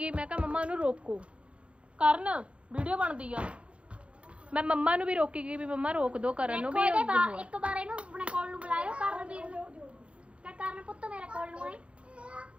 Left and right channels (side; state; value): left; late; 0.060 ms